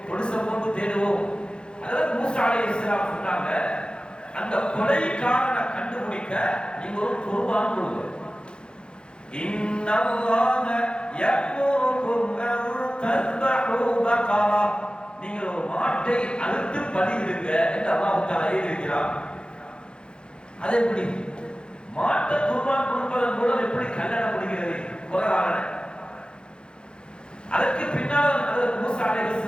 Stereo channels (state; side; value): late; right; 0.051 ms